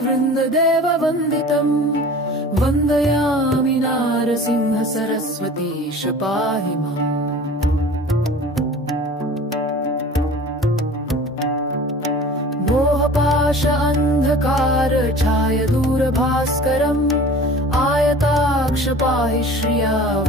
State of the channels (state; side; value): normal; both; correlation 0.42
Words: वन्दितम् वन्दयामि नारसिंह सरस्वतीश पाहि माम् मोहपाश अन्धकार छाय दूरभास्करम् आयताक्ष पाहि श्रिया